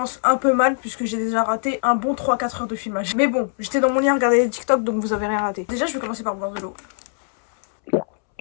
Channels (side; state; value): right; silent; 64 dB below the other